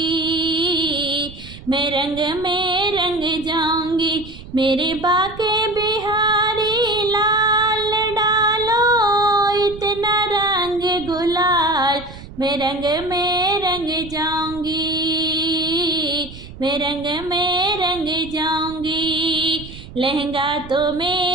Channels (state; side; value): noise; right; rumble, 15 dB below the sound